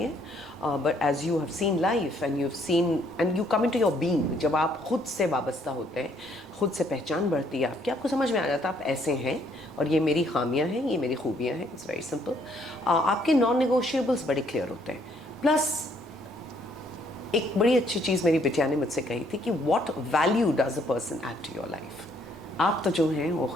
but as you have seen life and you have seen and you come into your being, जब आप खुद से वाबस्ता होते हैं, खुद से पहचान बढ़ती है आपकी, आपको समझ में आ जाता है आप ऐसे हैं और ये मेरी खामियां हैं, ये मेरी खूबियां हैं। It's very simple. आपके नॉन नेगोशिएबल्स बड़े क्लियर होते हैं। प्लस एक बड़ी अच्छी चीज़ मेरी बिटिया ने मुझसे कही थी कि what value does a person add to your life. आप तो जो हैं वो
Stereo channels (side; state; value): both; normal; correlation 0.67